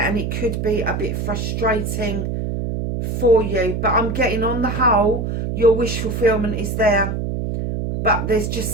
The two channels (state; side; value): noise; right; hum, 2 dB below the sound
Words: and it could be a bit frustrating for you. But I'm getting, on the whole, your wish fulfillment is there. But there's